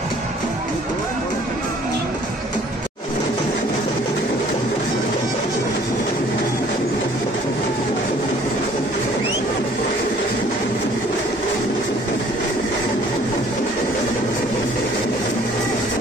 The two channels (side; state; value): both; normal; correlation 0.56